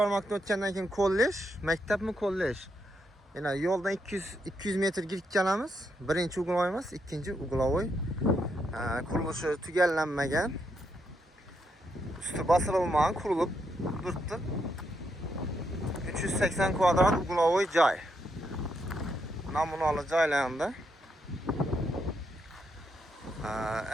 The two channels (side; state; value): both; normal; correlation 0.79